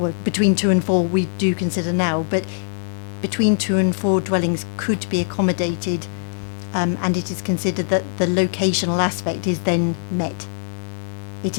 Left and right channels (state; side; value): silent; right; 62 dB below the other